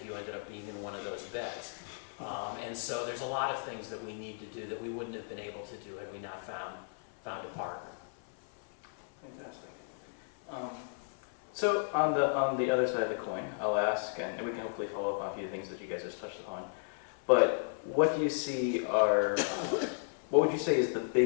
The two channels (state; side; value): silent; right; 55 dB below the other